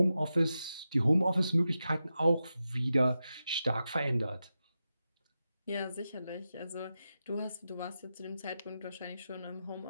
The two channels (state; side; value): inverted; both; correlation -0.90